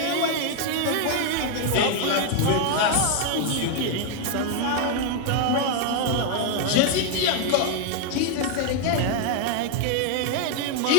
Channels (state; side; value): different; both; correlation 0.01